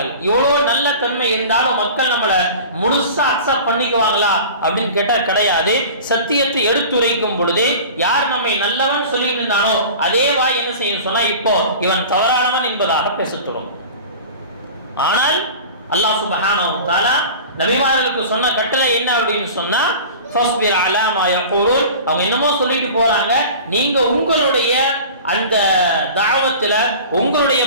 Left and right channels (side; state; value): both; inverted; correlation -0.38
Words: இவ்வளவு நல்ல தன்மை இருந்தாலும் மக்கள் நம்மளை முழுசா அக்செப்ட் பண்ணிக்குவாங்களா அப்படின்னு கேட்டா கிடையாது. சத்தியத்தை எடுத்துரைக்கும் பொழுது யார் நம்மை நல்லவன் சொல்லிட்டு இருந்தானோ அதே வாய் என்ன செய்யும் சொன்னா, இப்போ இவன் தவறானவன் என்பதாக பேசத்தோடும். ஆனால் அல்லாஹ் சுப்ஹானஹு வ தஆலா நபிமார்களுக்கு சொன்ன கட்டளை என்ன அப்படின்னு சொன்னா, ஃபஸ்பிர் அலா மா யகூலுன், அவங்க என்னமோ சொல்லிட்டு போறாங்க, நீங்க உங்களுடைய அந்த தாவத்துல உங்களுடைய